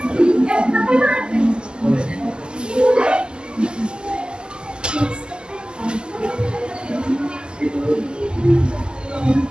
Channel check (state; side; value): late; left; 0.048 ms